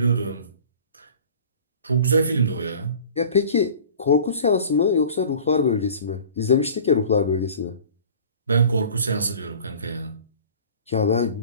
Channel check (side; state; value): both; inverted; correlation -0.45